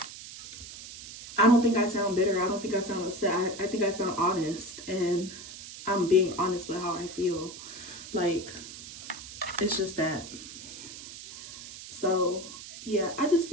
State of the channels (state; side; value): noise; right; hiss, 13 dB below the sound